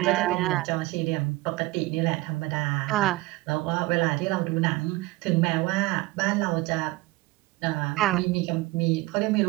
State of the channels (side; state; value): left; quieter; 20.8 dB